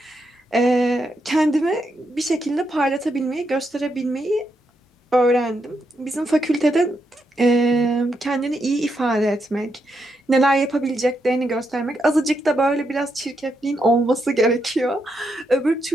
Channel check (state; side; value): normal; both; correlation 0.81